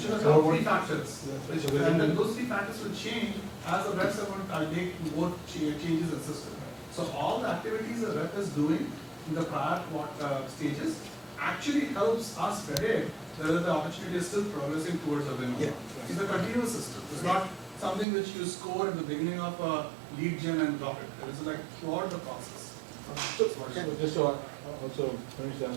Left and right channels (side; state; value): left; drops out; at 18.1 s